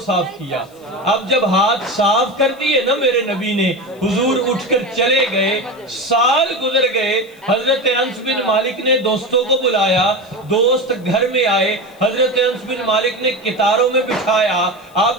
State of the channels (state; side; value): noise; left; hiss, 29 dB below the sound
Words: کیا۔ اب جب ہاتھ صاف کر دیے نا میرے نبی نے، حضور اٹھ کر چلے گئے، سال گزر گئے۔ حضرت انس بن مالک نے دوستوں کو بلایا، دوست گھر میں آئے، حضرت انس بن مالک نے کتاروں میں بٹھایا۔